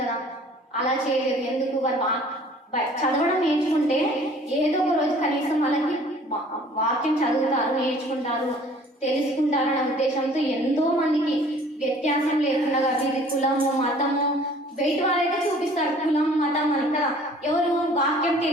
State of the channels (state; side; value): normal; both; correlation 0.52